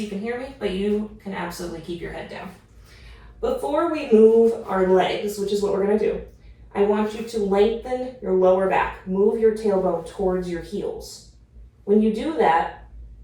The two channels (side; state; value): both; identical; correlation 1.00